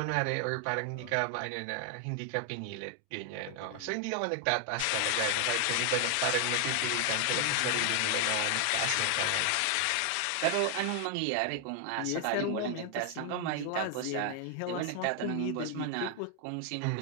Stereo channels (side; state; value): both; different; correlation 0.00